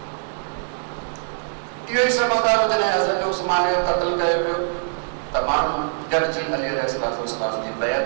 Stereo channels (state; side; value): silent; left; digital silence